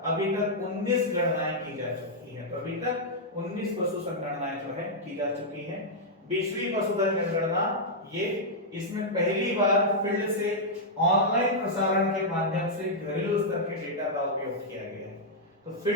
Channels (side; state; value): both; normal; correlation -0.06